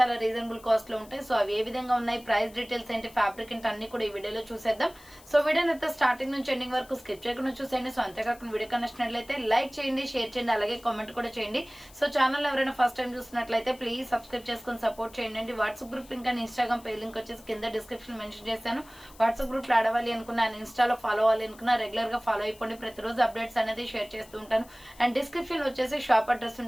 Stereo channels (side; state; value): left; noise; hiss, 23 dB below the sound